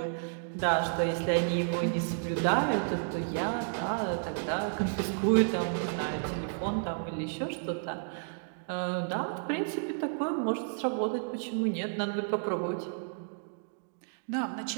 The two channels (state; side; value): silent; left; digital silence